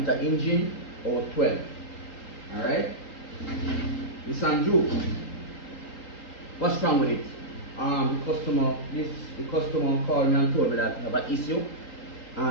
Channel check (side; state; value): right; late; 3.8 ms